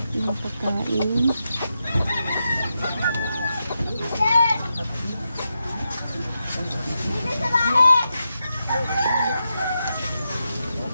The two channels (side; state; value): both; inverted; correlation -0.87